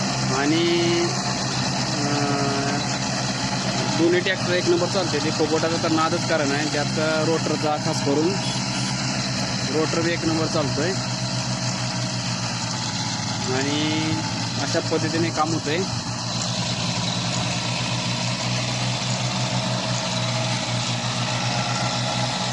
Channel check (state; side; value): identical; both; correlation 1.00